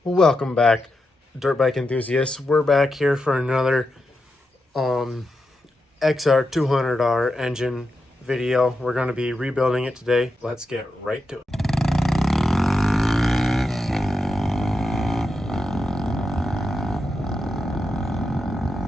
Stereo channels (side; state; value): both; normal; correlation 0.87